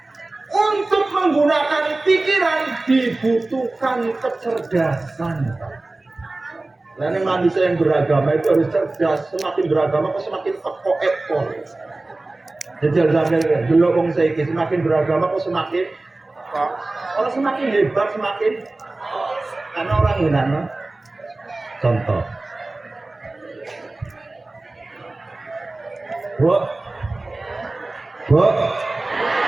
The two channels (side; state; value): left; quieter; 3.0 dB